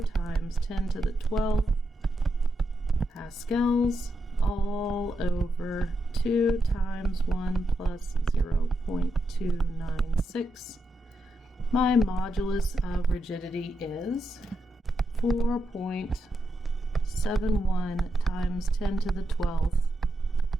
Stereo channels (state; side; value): normal; both; correlation 0.84